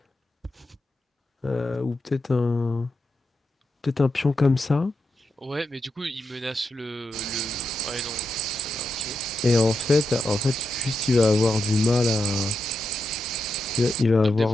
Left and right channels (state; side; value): normal; both; correlation 0.86